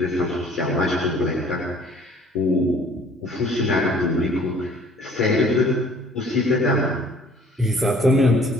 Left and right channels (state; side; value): normal; both; correlation 0.54